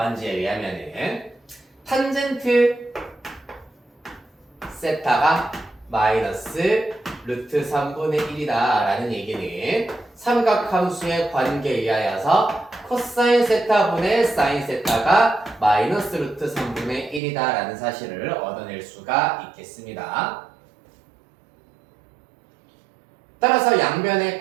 의하면은 탄젠트 세타가 마이너스 루트 3분의 1이다 라는 얘기는 삼각함수의 관계에 의하여서 코사인 세타분의 사인 세타가 마이너스 루트 3분의 1이다 라는 사실을 얻어낼 수가 있겠습니다. 따라서 양변에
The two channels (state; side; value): drops out; left; at 17.2 s